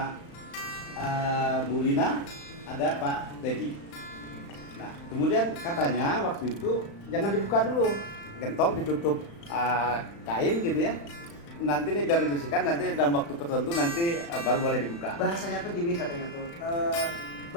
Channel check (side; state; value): right; late; 35 ms